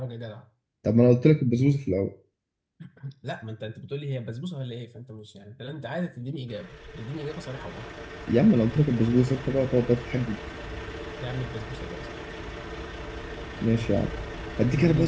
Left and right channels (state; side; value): identical; both; correlation 1.00